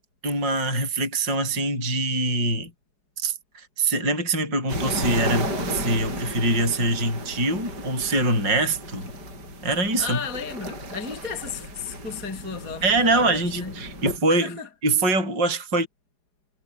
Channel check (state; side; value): late; left; 4.8 ms